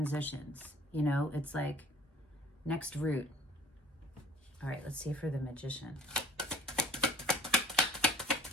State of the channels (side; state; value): both; normal; correlation 0.50